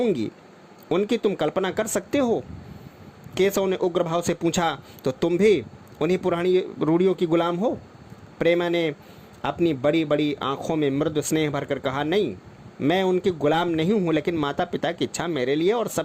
उनकी तुम कल्पना कर सकते हो। केशव ने उग्र भाव से पूछा, तो तुम भी उन्हीं पुरानी रूढ़ियों की गुलाम हो? प्रेमा ने अपनी बड़ी बड़ी आंखों में मृदु स्नेह भरकर कहा, नहीं, मैं उनकी गुलाम नहीं हूँ, लेकिन माता पिता की इच्छा मेरे लिए और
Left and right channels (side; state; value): both; identical; correlation 1.00